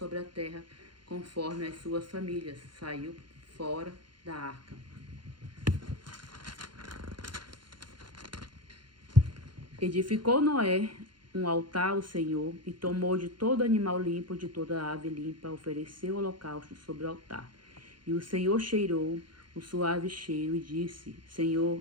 a terra, conforme as suas famílias, saiu fora da arca. Edificou Noé um altar ao Senhor, e tomou de todo animal limpo, de toda ave limpa, ofereceu holocausto sobre o altar. E o Senhor cheirou o suave cheiro e disse:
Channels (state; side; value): late; left; 0.71 ms